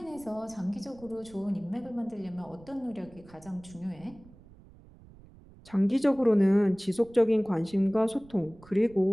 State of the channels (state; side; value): noise; right; rumble, 23 dB below the sound